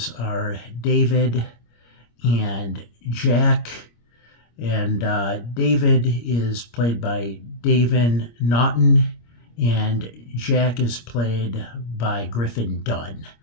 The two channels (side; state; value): right; late; 25 ms